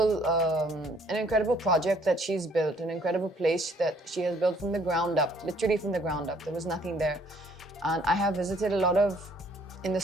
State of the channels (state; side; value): normal; both; correlation 0.62